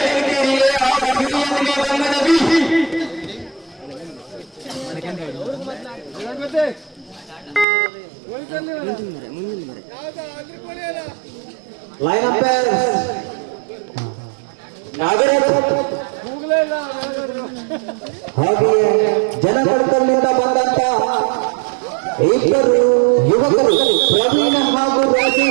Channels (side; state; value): left; drops out; at 7.7 s